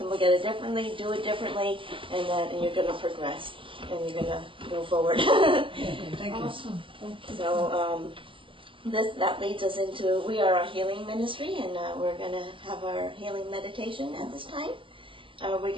look at it differently, do it differently, and you're going to progress and you're going to go forward. Thank you. Awesome. So, that leads us into, we are a healing ministry, and we're going to have our healing meditation at this time. We're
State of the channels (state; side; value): late; left; 0.25 ms